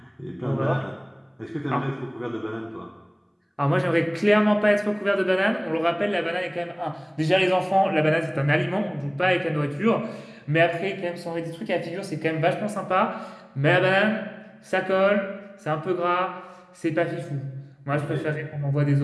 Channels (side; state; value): both; identical; correlation 1.00